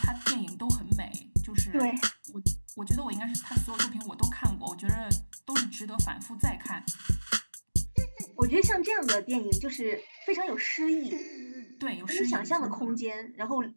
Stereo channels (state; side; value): inverted; both; correlation -1.00